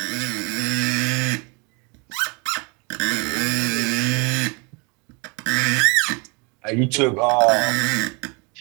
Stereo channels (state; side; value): quieter; left; 31.6 dB